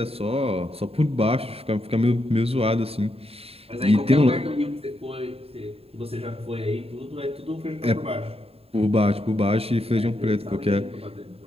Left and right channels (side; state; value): left; late; 0.28 ms